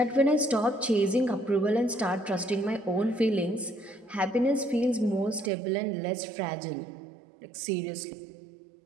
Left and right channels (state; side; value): drops out; left; at 5.5 s